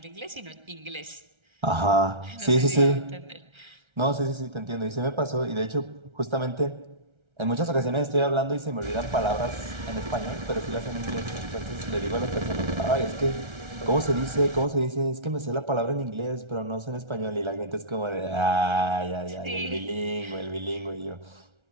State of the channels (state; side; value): late; left; 1.3 ms